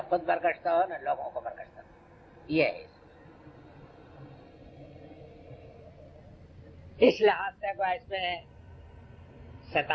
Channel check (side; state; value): both; identical; correlation 1.00